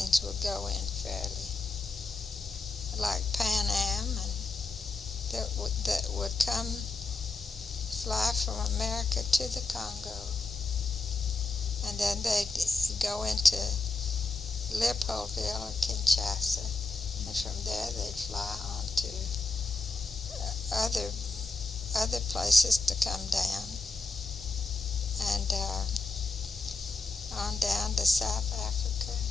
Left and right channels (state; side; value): quieter; right; 3.4 dB